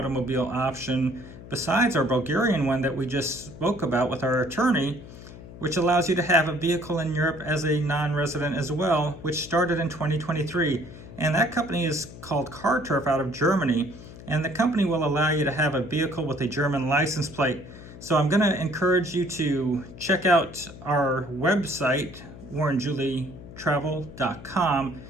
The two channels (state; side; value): noise; left; hum, 16 dB below the sound